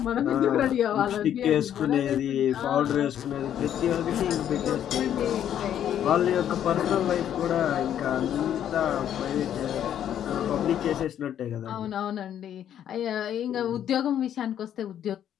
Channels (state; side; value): quieter; right; 10.2 dB